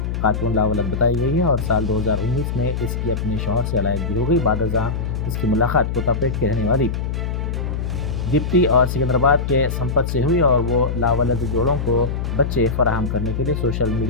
खातून लावलद बताई गई है और साल 2019 में इसकी अपने शौहर से अलहदगी हो गई। बादशाह इसकी मुलाकात कोतापेट के रहने वाली दीप्ति और सिकंदराबाद के संपत से हुई और वो लावलद जोड़ों को बच्चे फराहम करने के लिए सोशल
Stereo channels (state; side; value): noise; left; hum, 2 dB below the sound